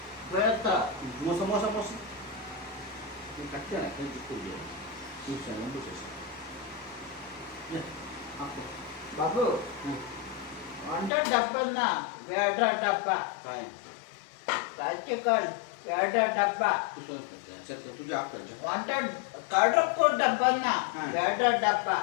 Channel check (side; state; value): right; drops out; at 11.1 s